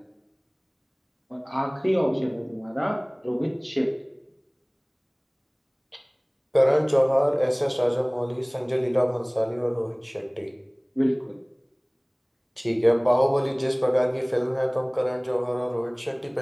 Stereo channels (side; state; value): both; identical; correlation 1.00